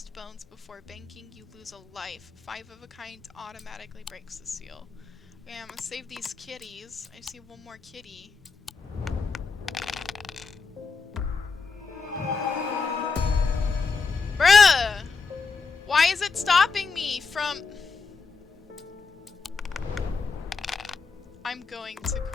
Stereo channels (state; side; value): quieter; right; 4.8 dB